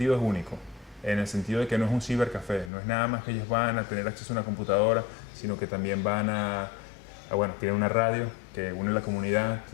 es único, en el sentido de que no es un cibercafé, no es nada más que ellos van a tener acceso a una computadora, sino que también van bueno, tienen una radio que une la comunidad,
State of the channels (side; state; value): right; drops out; at 2.7 s